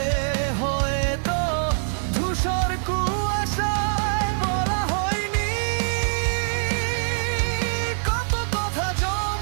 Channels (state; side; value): silent; left; digital silence